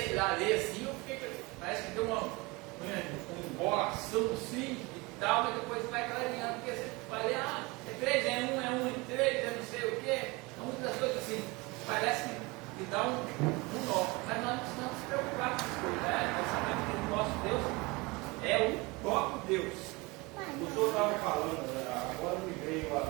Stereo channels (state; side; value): quieter; left; 24.9 dB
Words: a ler assim, eu fiquei, parece que deu uma embolação assim e tal, mas depois vai clareando, porque você vai ler, é 3 em 1, é 1 em 3, é não sei o quê, então muitas coisas assim, parece que dá um nó, mas nós não precisamos se preocupar com essas coisas, né? Nós sabemos que o nosso Deus é o próprio Deus. O senhor estava falando, agora me veio a